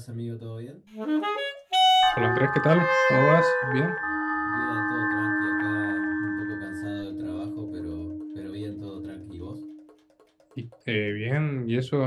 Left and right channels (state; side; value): identical; both; correlation 1.00